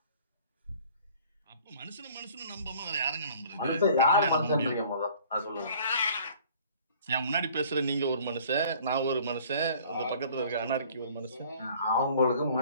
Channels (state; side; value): inverted; both; correlation -0.53